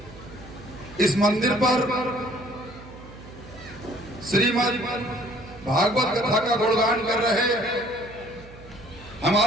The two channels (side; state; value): right; noise; hum, 19 dB below the sound